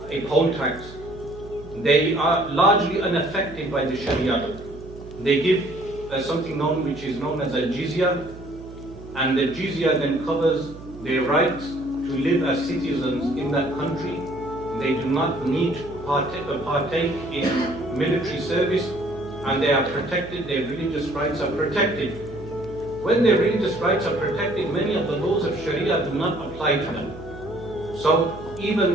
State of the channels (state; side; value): noise; right; hum, 16 dB below the sound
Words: a poll tax, they are largely unaffected by the Sharia law. They give something which is known as a jizya, and the jizya then covers their rights to live as citizens in that country. They do not need to partake in military service, and they are protected, their religious rights are protected. When their religious rights are protected, many of the laws of Sharia do not apply to them. So